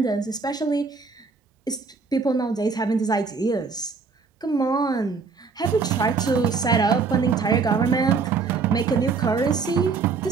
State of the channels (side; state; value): left; quieter; 4.8 dB